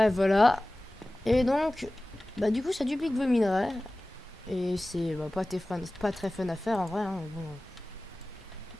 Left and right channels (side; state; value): both; normal; correlation 0.97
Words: voilà. Et donc, bah du coup, ça duplique vos minerais. Et c'est bah, pas très fun à faire en vrai. Hein, bon.